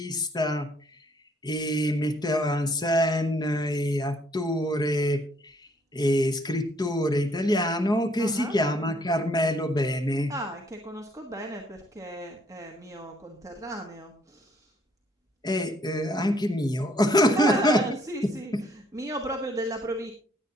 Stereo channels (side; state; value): both; normal; correlation 0.66